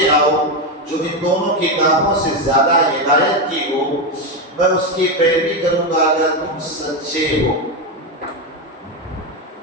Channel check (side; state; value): both; normal; correlation 0.10